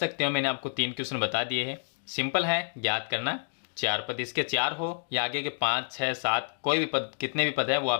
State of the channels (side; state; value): right; silent; digital silence